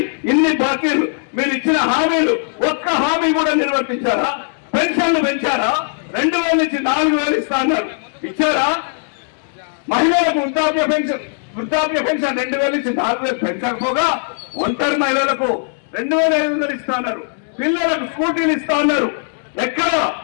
ఇన్ని బాకీలు. మీరు ఇచ్చిన హామీలు ఒక్క హామీ కూడా నిర్వర్తించారా? పెన్షన్లు పెంచారా? 2000 నుంచి 4000 ఇస్తా అన్నారు, ఇచ్చారా? మహిళలకు వృద్ధాప్య పెన్షన్ 2000 నుంచి 4000 పెంచకపోగా ఒంటరి మహిళలకు 2500 ఇస్తా అన్నారు. పిల్లలకు స్కూటీలు ఇస్తా అన్నారు. ఎక్కడ?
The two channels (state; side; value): silent; right; digital silence